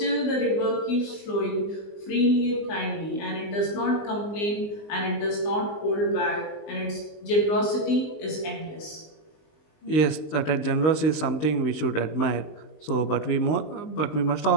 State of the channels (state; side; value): late; right; 20 ms